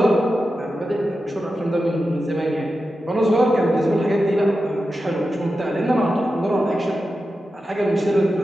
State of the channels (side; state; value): both; normal; correlation 0.91